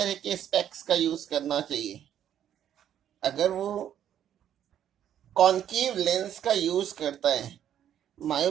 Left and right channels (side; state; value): left; quieter; 10.2 dB